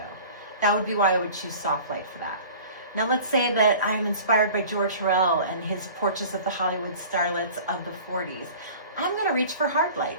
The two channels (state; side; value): inverted; both; correlation -0.43